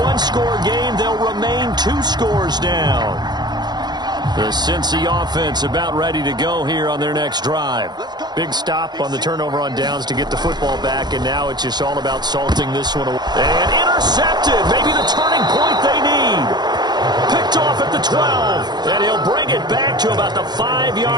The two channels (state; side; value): late; left; 0.21 ms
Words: 1-score game, they'll remain 2 scores down. The Cincy offense about ready to go here on their next drive. Big stop on the turnover on downs to get the football back, and now it's just all about salting this one away. And intercepted, maybe the turning point they need. Picked off at the 12, and he'll bring it back to about the